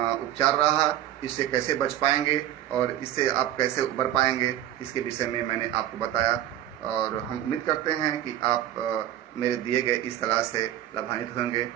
उपचार रहा, इससे कैसे बच पाएंगे और इससे आप कैसे उबर पाएंगे, इसके विषय में मैंने आपको बताया। और हम उम्मीद करते हैं कि आप मेरे दिए गए इस सलाह से लाभान्वित होंगे।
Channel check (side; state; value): left; quieter; 12.3 dB